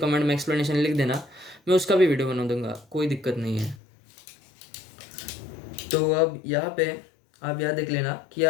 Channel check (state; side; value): drops out; right; at 3.8 s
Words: में एक्सप्लेनेशन लिख देना, मैं उसका भी वीडियो बना दूंगा, कोई दिक्कत नहीं है। तो अब यहाँ पे आप यहाँ देख लेना कि